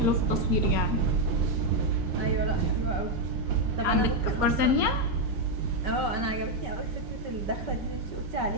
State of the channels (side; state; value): left; late; 5.2 ms